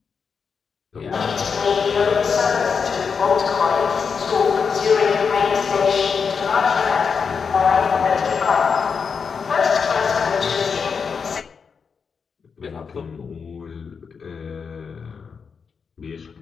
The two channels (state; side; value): quieter; right; 5.9 dB